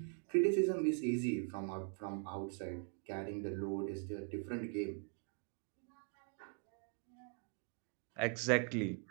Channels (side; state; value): left; quieter; 39.3 dB